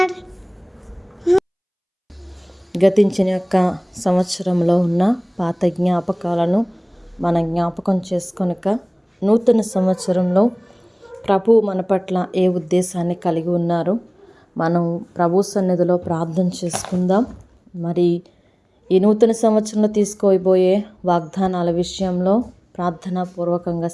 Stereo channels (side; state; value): both; identical; correlation 1.00